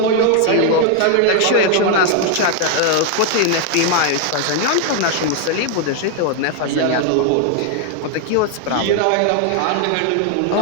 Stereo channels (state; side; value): different; both; correlation 0.00